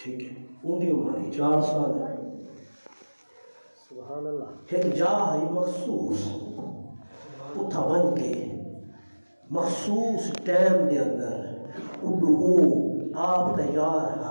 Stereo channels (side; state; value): both; inverted; correlation -1.00